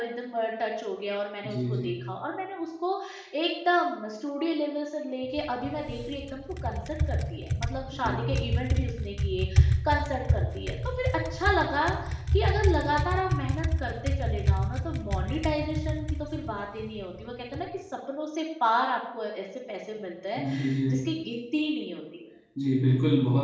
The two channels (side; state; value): both; identical; correlation 1.00